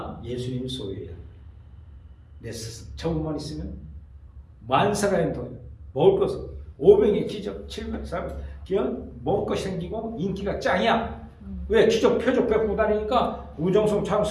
예수님 소유예요. 내 스승. 저것만 있으면 만사가인 돈, 먹을 것, 500의 기적, 700, 400, 먹을 것이 생기고 인기가 짱이야. 왜? 기적, 표적 베푸고 다니니까 우정성처럼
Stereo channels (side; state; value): both; identical; correlation 1.00